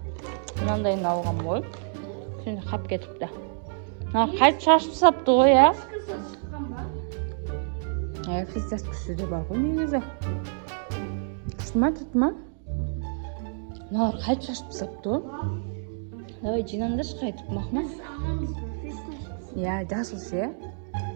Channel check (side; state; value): left; silent; digital silence